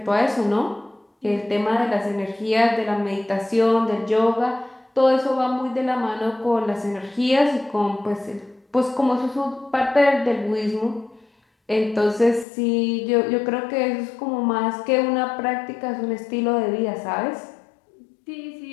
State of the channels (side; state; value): right; drops out; at 12.5 s